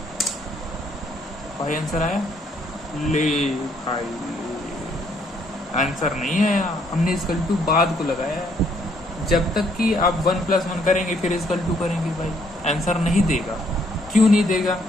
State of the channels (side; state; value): both; normal; correlation 0.68